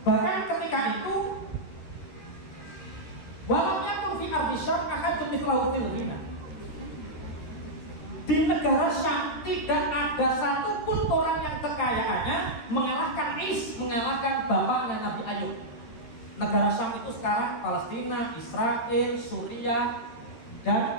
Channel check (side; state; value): right; late; 13 ms